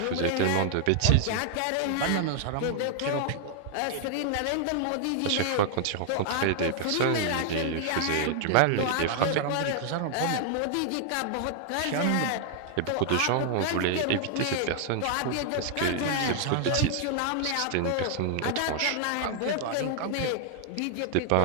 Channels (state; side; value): different; both; correlation 0.00